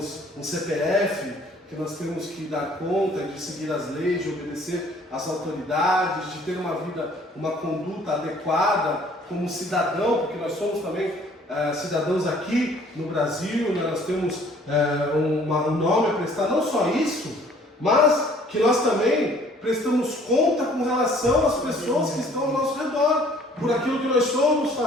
um CPF, que nós temos que dar conta de seguir as leis, de obedecer às autoridades, de ter uma vida, uma conduta adequada como cidadão, porque nós somos também cidadãos aqui no Brasil, né? Nós temos um nome a prestar, não só isso, mas que nós também prestamos conta com relação às pessoas que estão ao nosso redor, por aquilo que nós somos,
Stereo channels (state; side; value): normal; both; correlation 0.56